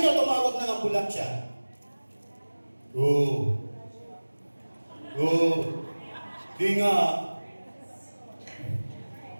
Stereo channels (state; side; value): inverted; both; correlation -1.00